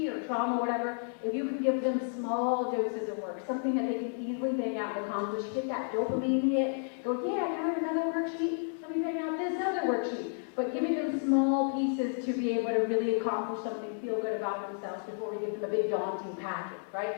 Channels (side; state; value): right; silent; digital silence